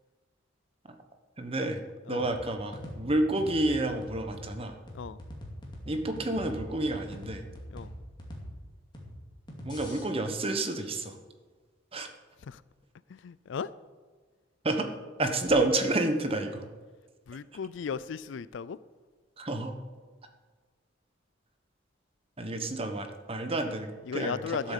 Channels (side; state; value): both; normal; correlation 0.46